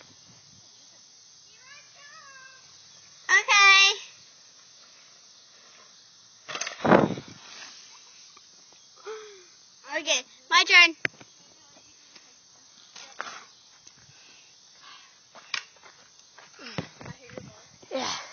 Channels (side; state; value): both; identical; correlation 1.00